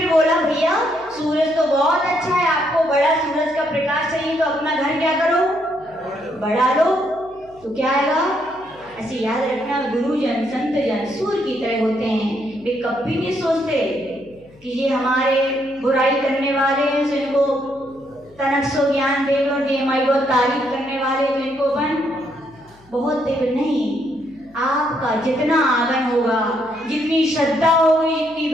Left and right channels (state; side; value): noise; left; hum, 27 dB below the sound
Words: बोला भैया सूरज तो बहुत अच्छा है, आपको बड़ा सूरज का प्रकाश चाहिए तो अपना घर क्या करो? बढ़ा लो। तो क्या आएगा? ऐसे याद रखना, गुरुजन संत जन सूर्य की तरह होते हैं। वे कभी नहीं सोचते कि ये हमारे बुराई करने वाले हैं तो इनको तनक ज्ञान दे दो, ये हमारी बहुत तारीफ करने वाले तो इनको अपन बहुत देव नहीं। आपका जितना आगन होगा, जितनी श्रद्धा होगी, जितनी